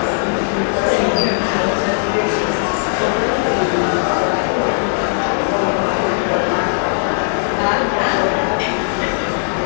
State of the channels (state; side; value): silent; right; digital silence